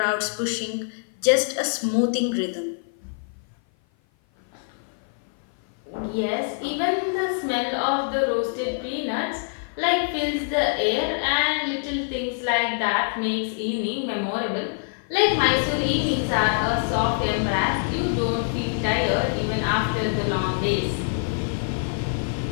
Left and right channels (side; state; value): right; silent; 55 dB below the other